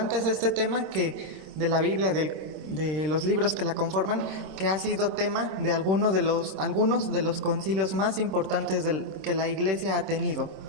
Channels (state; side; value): late; left; 26 ms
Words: es este tema que de la Biblia, de los libros que la conforman, que ha sido tema de algunos de los concilios más importantes que la Iglesia ha tenido.